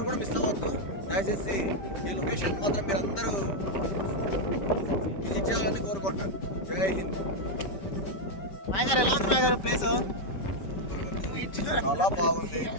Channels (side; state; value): right; late; 5.2 ms